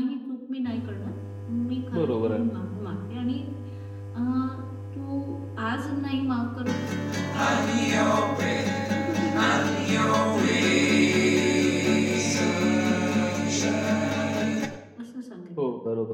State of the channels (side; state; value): both; identical; correlation 1.00